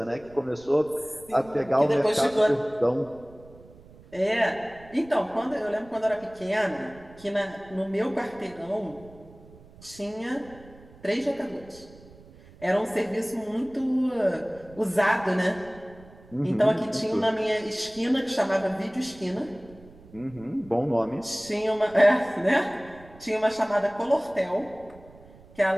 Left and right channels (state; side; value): noise; right; rumble, 22 dB below the sound